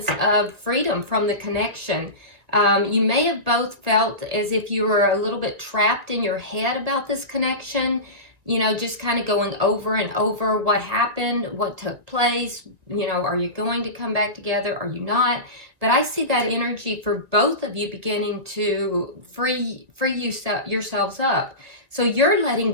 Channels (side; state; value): left; late; 1.7 ms